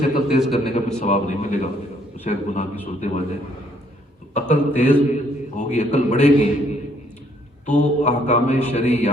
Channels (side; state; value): both; normal; correlation 0.66